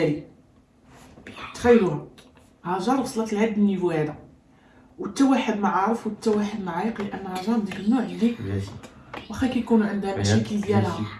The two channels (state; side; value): identical; both; correlation 1.00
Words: تخيلوها، هاجر وصلت لهاد النيفو هذا، وحتى واحد ما عارف وحتى واحد ما عايق، لان هاجر ديك النوع اللي واخا كيكونوا عندها مشاكل ديالها